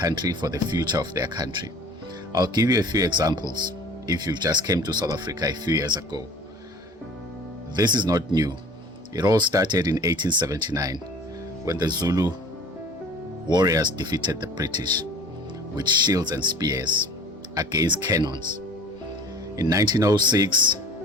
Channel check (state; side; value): normal; both; correlation 0.45